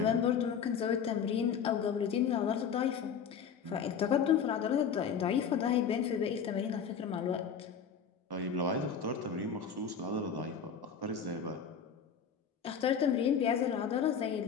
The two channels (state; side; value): quieter; right; 7.0 dB